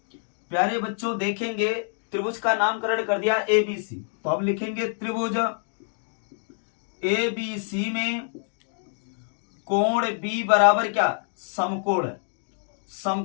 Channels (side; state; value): right; silent; digital silence